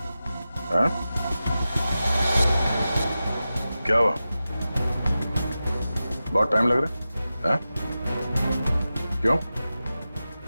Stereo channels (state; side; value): inverted; both; correlation -0.93